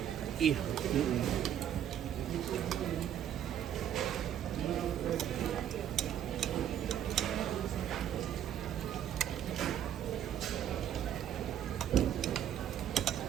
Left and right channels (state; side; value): quieter; left; 10.1 dB